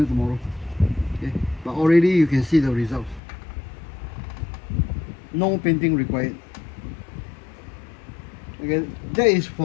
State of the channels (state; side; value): drops out; right; at 3.2 s